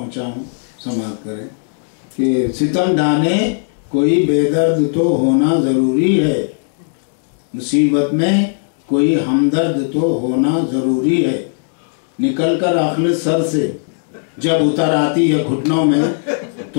हूँ समाअत करें कि सितम ढाने कोई बेदर्द तो होना ज़रूरी है। मुसीबत में कोई हमदर्द तो होना ज़रूरी है। निकल कर आखिर सर से जब उतर आती है घुटनों में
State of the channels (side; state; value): right; silent; digital silence